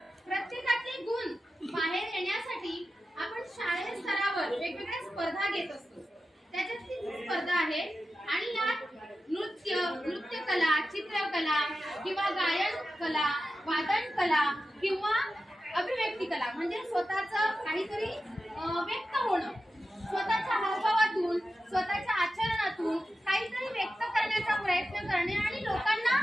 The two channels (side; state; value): both; normal; correlation 0.92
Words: प्रत्येकाचे गुण बाहेर येण्यासाठी आपण शालेय स्तरावर वेगवेगळ्या स्पर्धा घेत असतो। त्याच्यातली स्पर्धा आहे आणि यात नृत्यकला, चित्रकला किंवा गायन कला, वादन कला किंवा अभिव्यक्ती कला म्हणजे स्वतःचं काहीतरी व्यक्त होणं स्वतःच्या हावभावातून स्वतःच्या आचरणातून काहीतरी व्यक्त करण्याचा प्रयत्न करणे आणि लोकांना